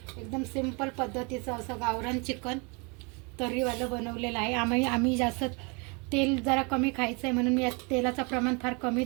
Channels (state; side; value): quieter; left; 31.4 dB